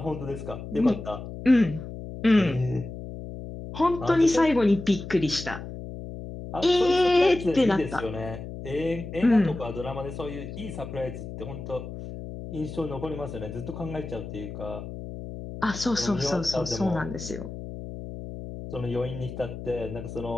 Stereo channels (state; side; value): noise; left; hum, 10 dB below the sound